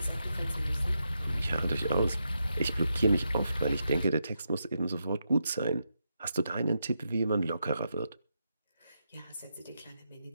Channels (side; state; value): both; inverted; correlation -0.84